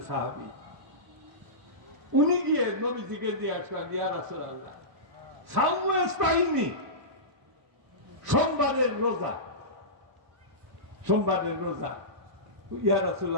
সাহাবী, উনি গিয়ে নবীজিকে জিজ্ঞাসা করেন, ইয়া রাসূলুল্লাহ সাওমু ইস্তাইনি, সোমবারের রোজা, সোমবারের রোজা, ইয়া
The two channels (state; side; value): late; left; 1.4 ms